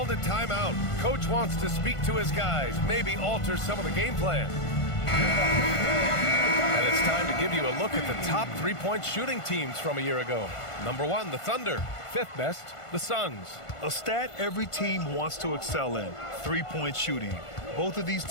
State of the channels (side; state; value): right; late; 1.5 ms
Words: a timeout. Coach wants to speak to his guys, maybe alter some of the game plan. And it's time to give you a look at the top three-point shooting teams from a year ago. Number 1, the Thunder. 5th best, the Suns. A stat every team wants to excel in, three-point shooting. Both of these